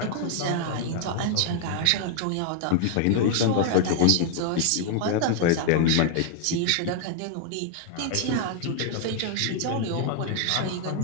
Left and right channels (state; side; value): different; both; correlation 0.00